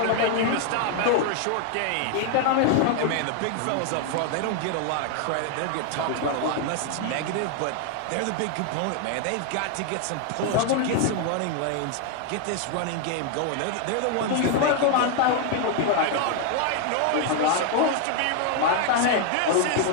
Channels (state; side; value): different; both; correlation 0.00